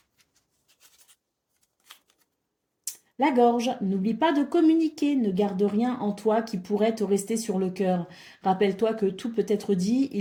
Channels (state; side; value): identical; both; correlation 1.00